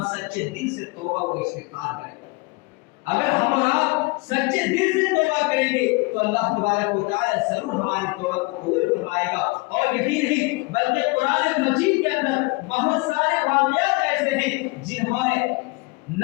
سچے دل سے توبہ کو استغفار کریں. اگر ہم اور آپ سچے دل سے توبہ کریں گے تو اللہ تبارک و تعالی ضرور ہماری توبہ کو قبول فرمائے گا. اور یہی نہیں بلکہ قرآن مجید کے اندر بہت سارے واقعات ایسے ہیں جنہوں نے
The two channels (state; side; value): quieter; right; 26.5 dB